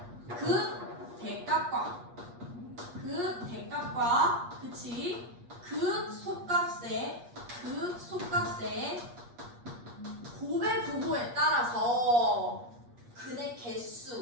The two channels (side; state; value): left; late; 8.4 ms